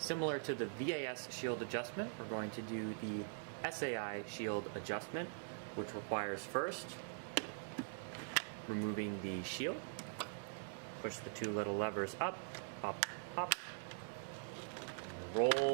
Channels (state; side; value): silent; left; digital silence